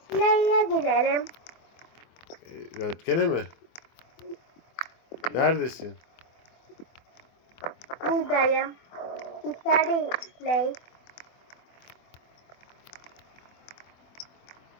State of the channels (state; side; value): late; right; 24 ms